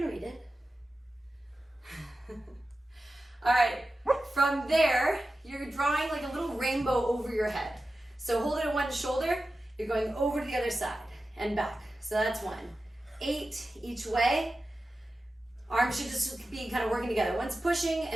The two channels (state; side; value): normal; both; correlation 0.93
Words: read it. All right, from there, you're drawing like a little rainbow over your head. So hold it at one shoulder, you're going over to the other side and back. So that's 1. 8 each way. Arms should just be kind of working together. One's pushing